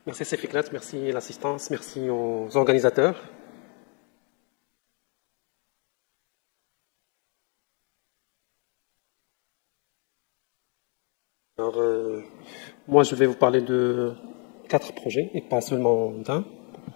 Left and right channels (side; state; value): right; quieter; 36.1 dB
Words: Merci Sefiklat, merci l'assistance, merci aux organisateurs. Alors, moi, je vais vous parler de 4 projets et pas seulement d'un.